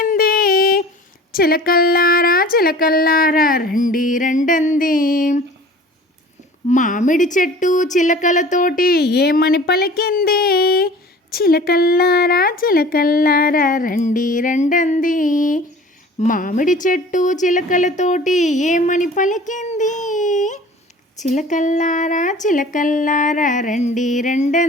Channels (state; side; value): normal; both; correlation 0.44